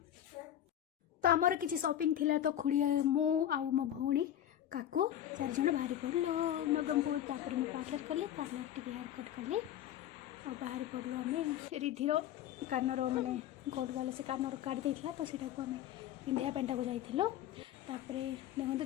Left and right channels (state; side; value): quieter; right; 11.3 dB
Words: तो आमर किसी शॉपिंग थिला तो खुड़ी मो आउ मो भौणी काकू 4 जन बाहरी पड़लो नवरंगपुर तापर मैं पार्लर कली पार्लर टिके हेयर कट कली और बाहरी पड़लो आम रिधिर कानर माने गोल्ड वाले से कानर काट देइथिला तो सेटा को आम पिंधिया पेंटा को जाइथिलो तापरे देखो